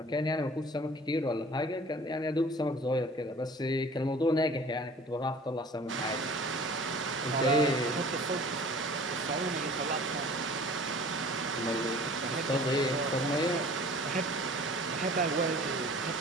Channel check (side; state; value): both; normal; correlation 0.46